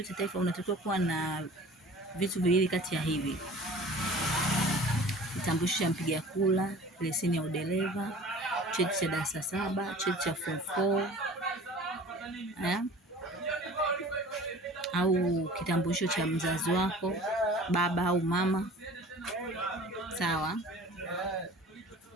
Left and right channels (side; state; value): both; normal; correlation 0.43